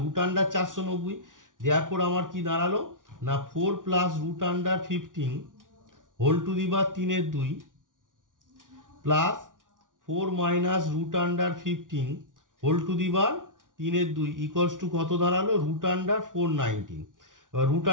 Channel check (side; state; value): left; late; 0.88 ms